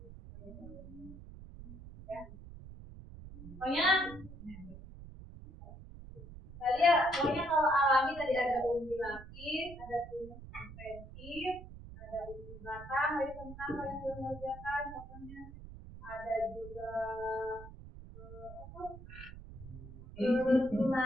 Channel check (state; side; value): noise; right; rumble, 14 dB below the sound